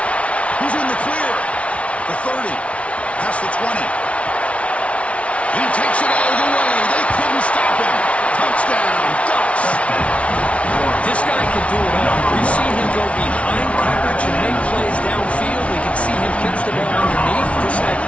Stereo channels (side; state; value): right; late; 0.063 ms